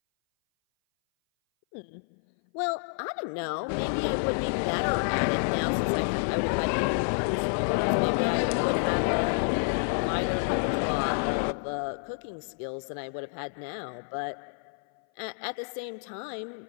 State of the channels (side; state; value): right; silent; 57 dB below the other